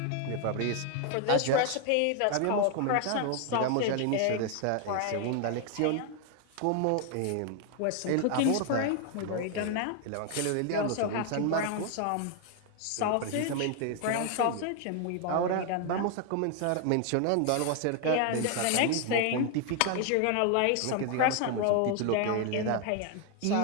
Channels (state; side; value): different; both; correlation 0.00